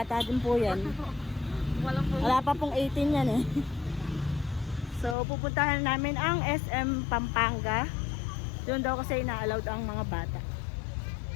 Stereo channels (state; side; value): drops out; right; at 5.2 s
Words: din po yan. Wala pa pong 18 yan eh. So pupuntahan namin ang SM Pampanga. Doon daw kasi ina-allowed ang mga bata.